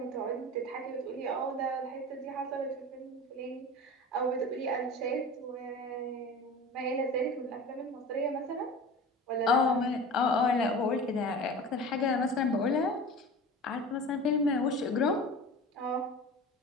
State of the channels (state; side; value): normal; both; correlation 0.35